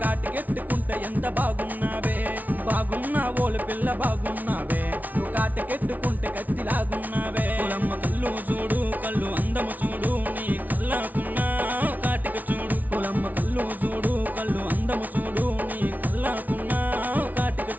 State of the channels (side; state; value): left; late; 0.077 ms